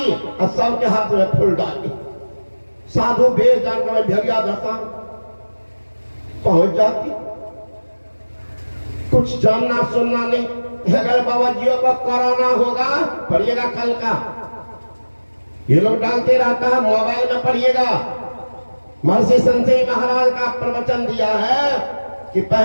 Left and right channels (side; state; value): both; inverted; correlation -1.00